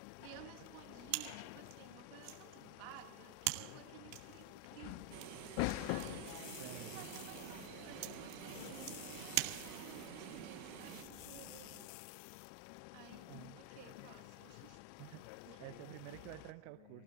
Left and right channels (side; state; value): both; different; correlation 0.00